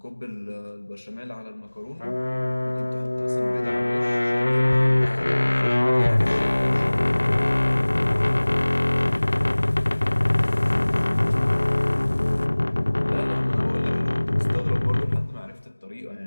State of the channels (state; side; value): inverted; both; correlation -1.00